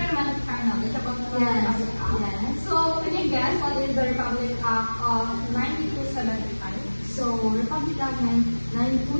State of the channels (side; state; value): both; inverted; correlation -1.00